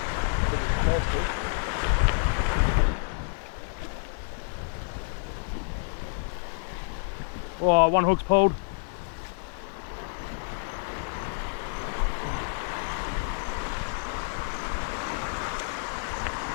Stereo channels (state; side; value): silent; right; 59 dB below the other